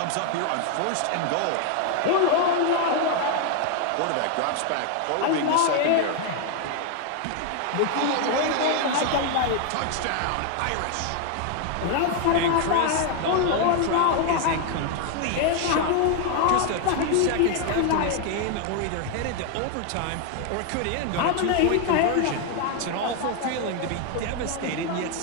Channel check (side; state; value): both; different; correlation 0.01